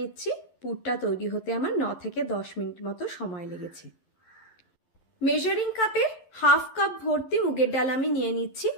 পুরটা তৈরি হতে আমার 9 থেকে 10 মিনিট মতো সময় লেগেছে। মেজারিং কাপে 1/2 কাপ ভর্তি মুগের ডাল আমি নিয়ে নিচ্ছি,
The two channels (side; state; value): right; late; 11 ms